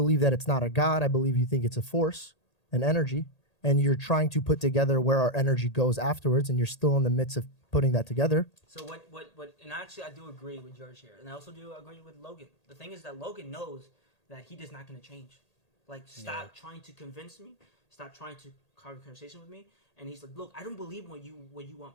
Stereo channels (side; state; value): right; late; 1.8 ms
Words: that it's not a god. I believe you think it's a force, an energy, and you're trying to put together where our energy goes afterwards, and you're still in the midst of putting that together. So what, and actually I do agree with George here. And I also do agree with Logan. The thing is that Logan knows that he is not going to change. Like, stop trying to convince me. Stop trying to have a conversation with me. And he's like, look, I don't believe what you